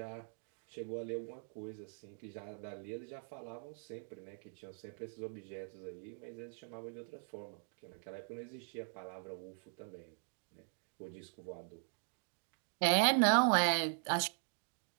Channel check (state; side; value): silent; left; 50 dB below the other